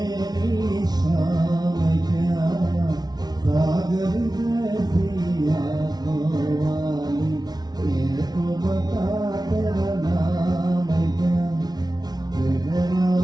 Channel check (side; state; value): left; late; 0.19 ms